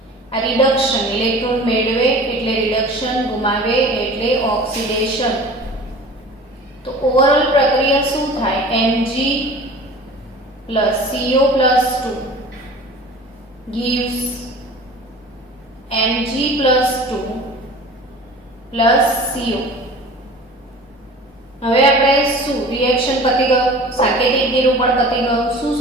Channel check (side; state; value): both; normal; correlation 0.41